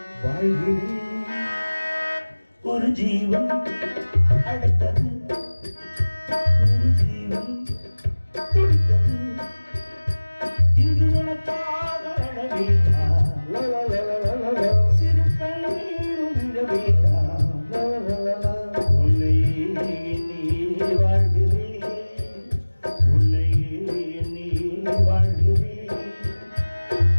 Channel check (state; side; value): inverted; both; correlation -1.00